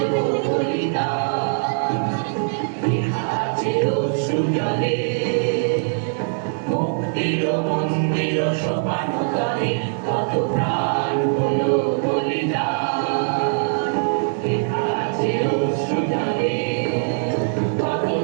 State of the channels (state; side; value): silent; left; 64 dB below the other